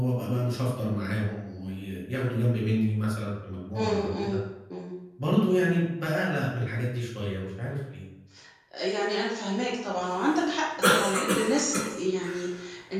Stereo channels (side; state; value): both; identical; correlation 1.00